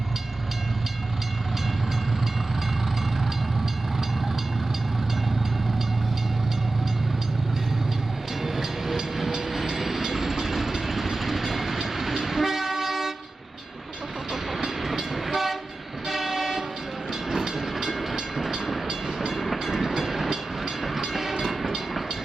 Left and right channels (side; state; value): left; quieter; 3.0 dB